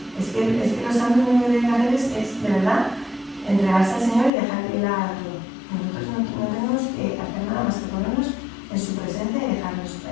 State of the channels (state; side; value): drops out; right; at 4.3 s